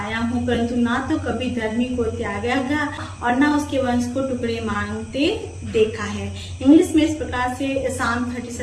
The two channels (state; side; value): identical; both; correlation 1.00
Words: हूँ, परंतु ना तो कभी धर्मी को त्यागा गया और ना उसके वंश को टुकड़े मांगते देखा है। इंग्लिश में इस प्रकार से Psalm